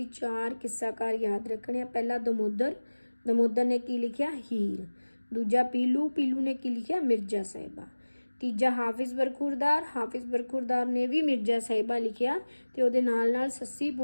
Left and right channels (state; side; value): inverted; both; correlation -1.00